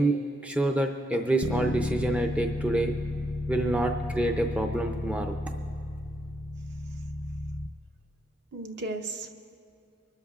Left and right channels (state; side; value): normal; both; correlation 0.78